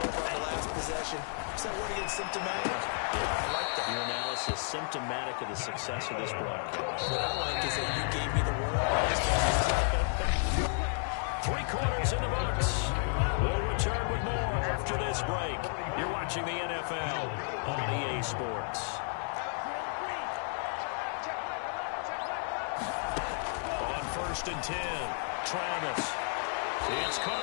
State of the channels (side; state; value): right; silent; 56 dB below the other